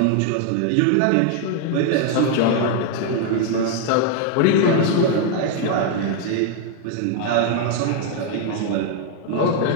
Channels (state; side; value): different; both; correlation 0.00